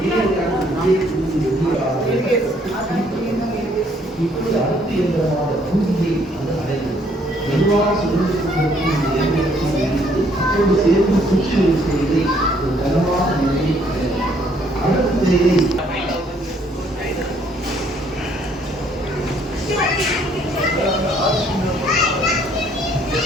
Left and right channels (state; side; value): normal; both; correlation 0.65